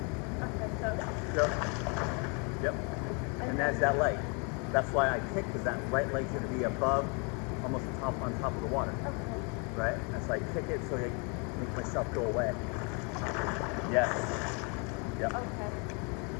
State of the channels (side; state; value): right; quieter; 34.7 dB